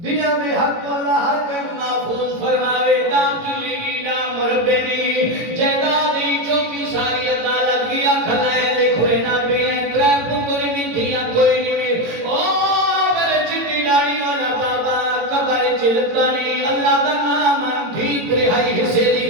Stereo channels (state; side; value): late; left; 18 ms